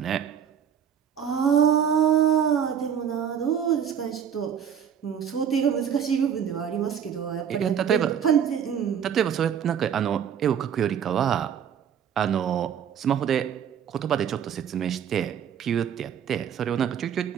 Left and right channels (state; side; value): quieter; left; 8.4 dB